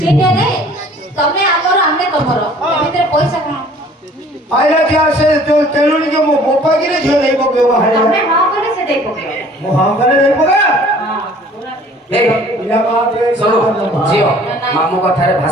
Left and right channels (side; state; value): both; normal; correlation 0.52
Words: ସେଇଟା ରେ ତମେ ଆମର ଆମେ ତମର ଏ ଭିତରେ ପଇସା କଣ आइला क्या से जो तेलुनी के मो गोपा गिरे झो नहीं पके वहां ତମେ ହଁ କଲେ ସେ ଦେଇ ପକେଇବ मो हां करे नहीं पका ହଁ ପୁରା এই इला बात रे শোনো ঝিও মামু কথারে